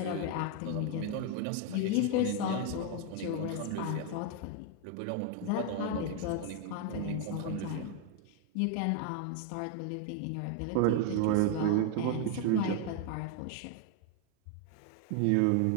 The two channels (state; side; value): different; both; correlation 0.01